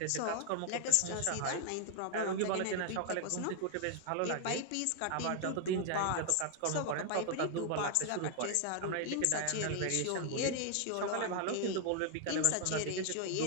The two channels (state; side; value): different; both; correlation 0.00